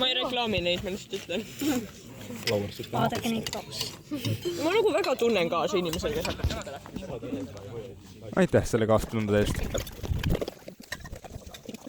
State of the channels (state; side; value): identical; both; correlation 1.00